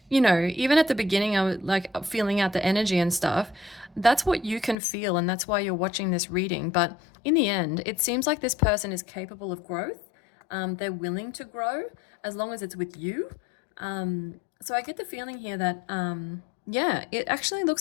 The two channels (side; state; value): right; drops out; at 4.8 s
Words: even at the beginning, I was like feeling out the energy and stuff. That's what you can feel, and that's why you're watching this reading. But in the end, it seems like this person is capable of growth. They're willing to grow as long as it's with you. So I get the feeling here that, yeah, it actually